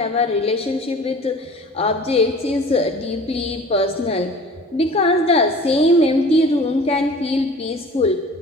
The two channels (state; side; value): normal; both; correlation 0.44